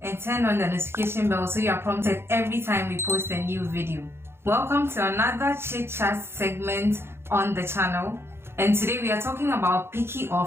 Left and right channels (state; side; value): late; left; 0.12 ms